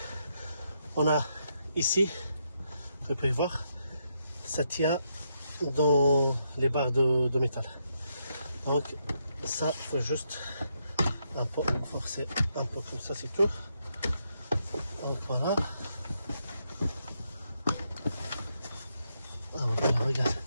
on a ici, vous pouvez voir, ça tient dans les barres de métal. Donc ça, il faut juste un peu forcer, un peu comme ça, c'est tout. Donc voilà. Oh, ben,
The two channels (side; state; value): both; inverted; correlation -0.79